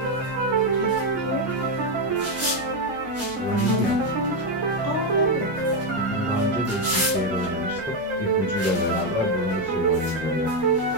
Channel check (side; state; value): both; normal; correlation 0.05